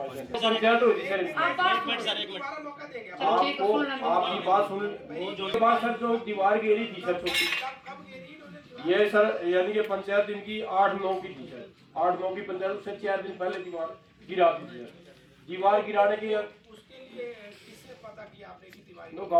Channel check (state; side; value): identical; both; correlation 1.00